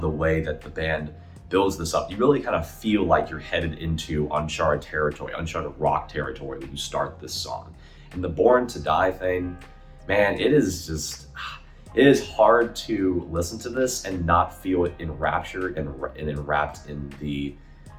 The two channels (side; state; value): both; identical; correlation 1.00